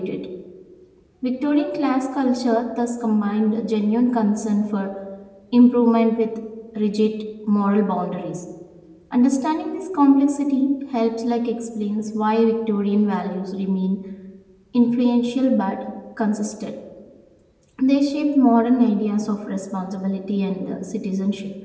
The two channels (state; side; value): identical; both; correlation 1.00